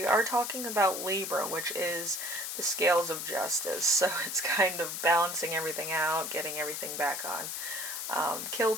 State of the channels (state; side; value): noise; left; hiss, 5 dB below the sound